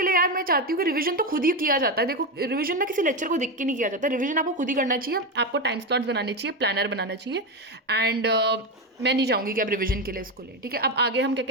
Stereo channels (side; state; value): both; normal; correlation 0.13